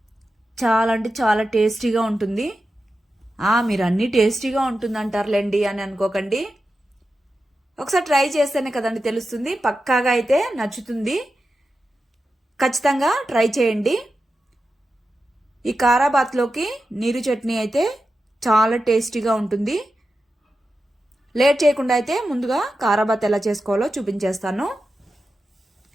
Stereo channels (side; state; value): both; normal; correlation 0.91